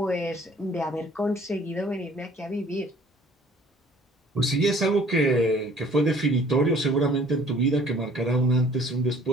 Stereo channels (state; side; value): normal; both; correlation 0.54